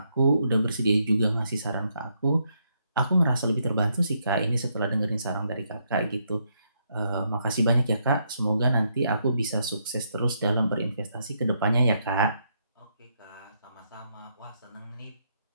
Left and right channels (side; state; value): both; inverted; correlation -0.77